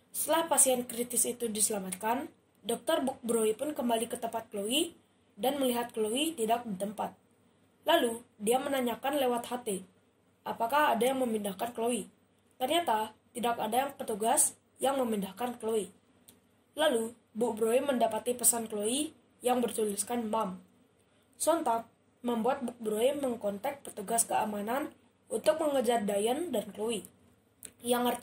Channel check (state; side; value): identical; both; correlation 1.00